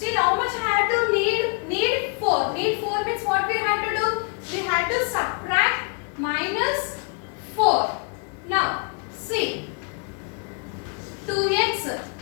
how much I had to need? Need 4. Need 4 means what we had to do? We had to subtract minus 4. Now see, 2x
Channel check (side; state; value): right; quieter; 37.6 dB